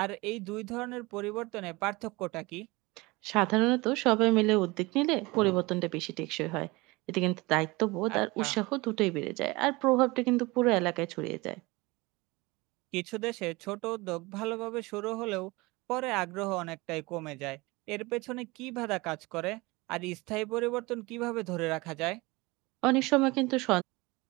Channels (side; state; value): left; quieter; 23.3 dB